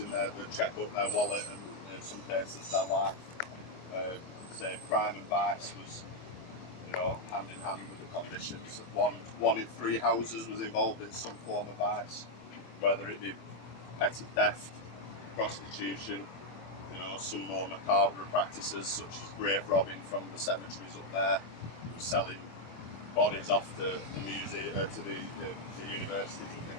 their checkbook, their wallet, and in some cases their life. Say crime and vice was, you know, hand in hand with the conditions. One in 3 houses was involved in some form of vice, whether it be petty theft, prostitution, you know, some more macabre practices such as grave robbing from the cemeteries up there, selling bodies off to the museum, to the universities and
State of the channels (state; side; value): late; right; 24 ms